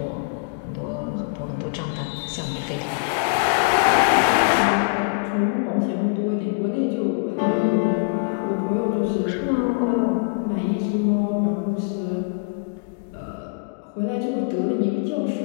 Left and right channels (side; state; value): right; quieter; 36.0 dB